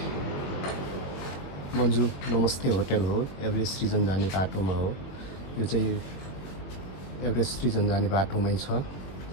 मन्जु नमस्ते होटल हो। एभरेस्ट रिजन जाने बाटोमा हो। यो चाहिँ एभरेस्ट रिजन जाने बाटोमै छ।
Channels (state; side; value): late; right; 22 ms